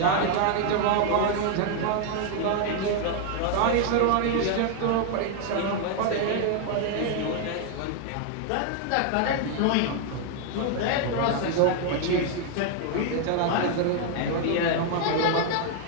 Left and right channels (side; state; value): both; different; correlation 0.00